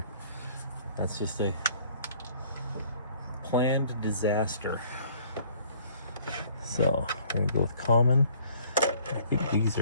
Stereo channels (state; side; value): inverted; both; correlation -0.57